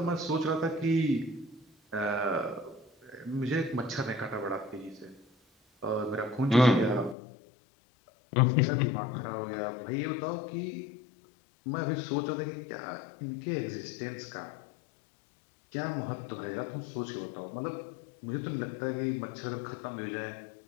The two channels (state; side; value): drops out; right; at 7.2 s